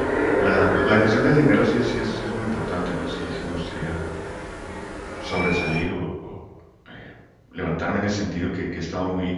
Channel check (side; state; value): both; identical; correlation 1.00